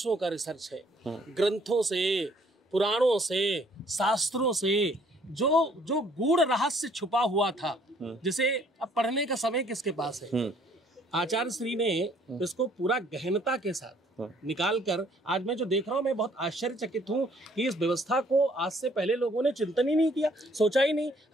का रिसर्च है, ग्रंथों से, पुराणों से, शास्त्रों से जो गूढ़ रहस्य छुपा हुआ था, जिसे अब पढ़ने का समय किसके पास है। आचार्य श्री ने इसको पूरा गहनता के साथ निकाल कर, आज मैं जो देख रहा हूँ मैं बहुत आश्चर्यचकित हूँ कि इस व्यवस्था को आज से पहले लोगों ने चिंतन ही नहीं किया, सोचा ही नहीं।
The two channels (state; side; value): normal; both; correlation 0.62